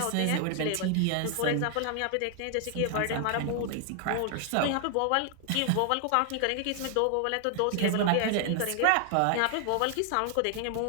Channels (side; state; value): both; different; correlation 0.00